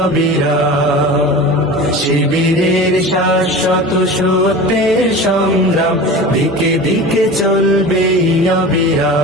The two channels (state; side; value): normal; both; correlation 0.34